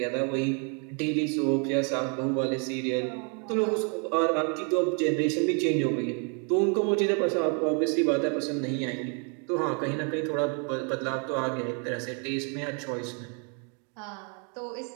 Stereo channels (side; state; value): left; quieter; 38.6 dB